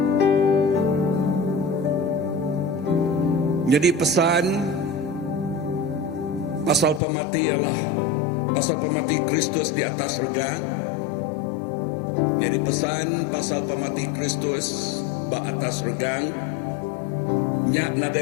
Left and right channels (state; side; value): drops out; right; at 7.0 s